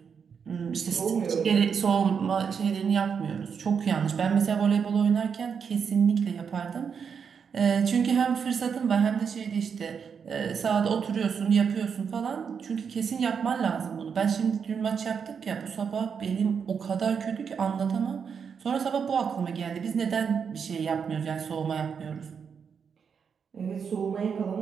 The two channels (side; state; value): left; quieter; 6.6 dB